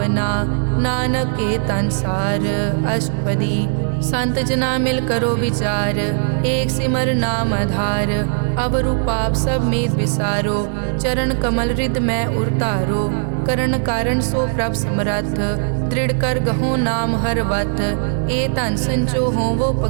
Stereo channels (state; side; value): silent; left; digital silence